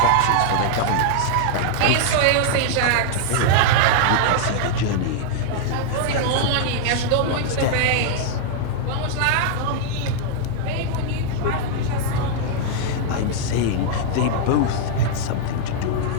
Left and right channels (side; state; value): both; different; correlation -0.01